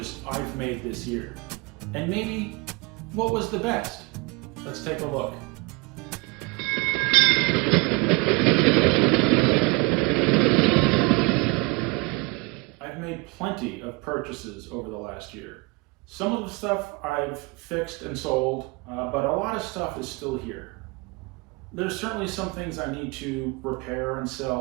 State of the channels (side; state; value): left; quieter; 28.5 dB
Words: I've made this year. And maybe what was the best. Let's take a look. I've made plenty of purchases over the last year. Some of the stuff I've fixed and sold, but a lot of stuff is still here. There's certainly some things I need to repair and